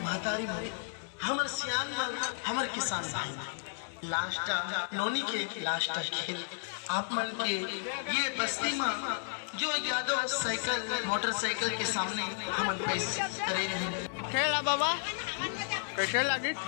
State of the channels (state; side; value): silent; right; digital silence